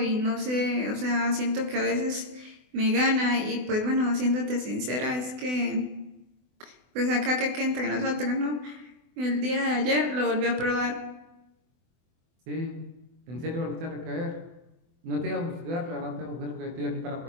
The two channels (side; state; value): left; late; 24 ms